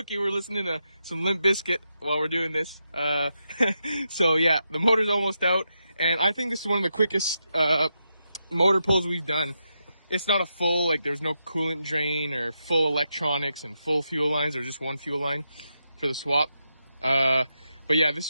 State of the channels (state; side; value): inverted; both; correlation -0.85